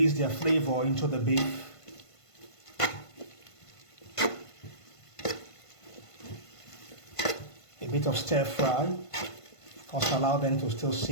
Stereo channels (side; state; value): right; late; 1.5 ms